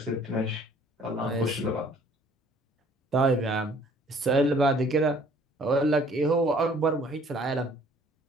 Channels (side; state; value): both; normal; correlation 0.56